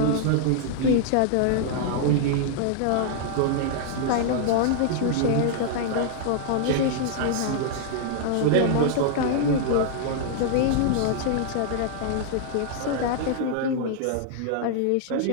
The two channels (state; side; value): different; both; correlation -0.01